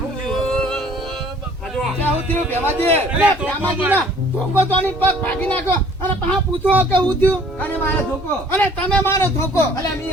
હું થયું ભેમાજી અરે ભેમાજી ના ધોકો તો ની પગ ભાગી નાખ્યો અને પાછા પૂછો કે હું થયું અને મારે ધોકો અને તમે મારો ધોકો અલે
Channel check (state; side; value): normal; both; correlation 0.54